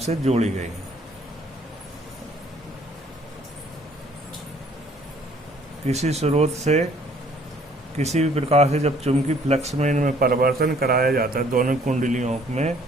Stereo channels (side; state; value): both; normal; correlation 0.59